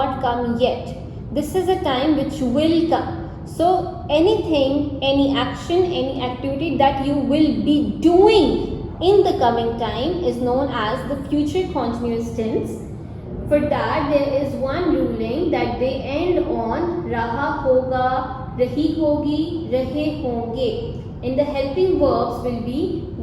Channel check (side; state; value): both; identical; correlation 1.00